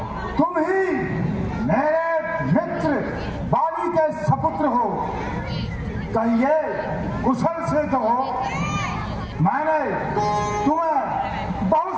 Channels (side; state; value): both; identical; correlation 1.00